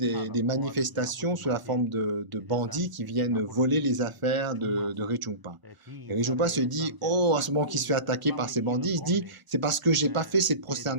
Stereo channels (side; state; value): left; late; 1.0 ms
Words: manifestations sous la forme de bandits qui viennent voler les affaires de Rinpoche. Et Rinpoche se dit, oh, à ce moment qu'il se fait attaquer par ces bandits, il se dit, c'est parce que j'ai pas fait cette